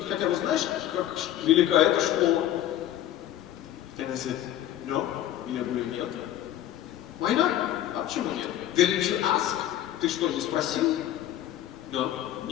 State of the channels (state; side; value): quieter; right; 12.4 dB